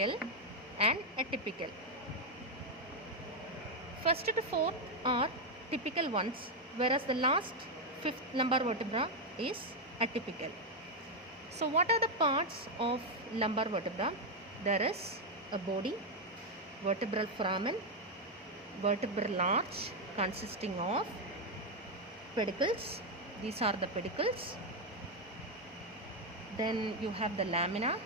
and atypical. First to fourth are typical ones, whereas the last fifth lumbar vertebra is atypical. So what are the parts of lumbar vertebra? There is a body, vertebral foramen, vertebral arch consisting of pedicles. These are the pedicles. Then you have the lamina.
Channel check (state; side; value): normal; both; correlation 0.03